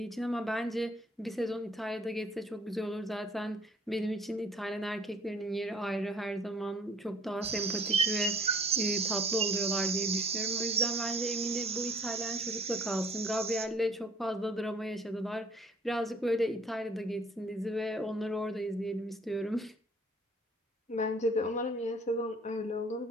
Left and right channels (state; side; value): normal; both; correlation 0.56